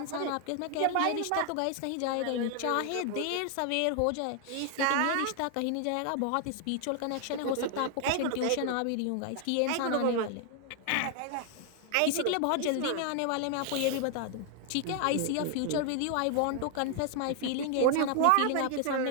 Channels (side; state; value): both; different; correlation 0.00